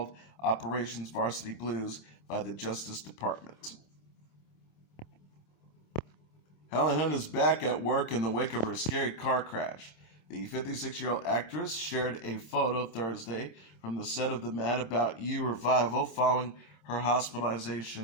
Operations Varsity Blues by the Justice Department. Helen Hunt is back at work in the wake of her scary car crash. The 56-year-old actress shared a photo Thursday from the set of the Mad About You revival following her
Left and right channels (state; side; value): late; right; 26 ms